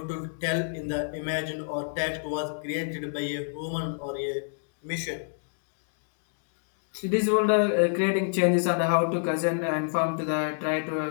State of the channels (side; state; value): right; silent; digital silence